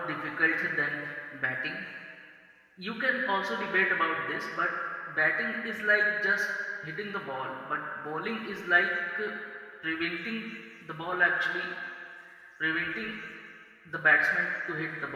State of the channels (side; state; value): both; identical; correlation 1.00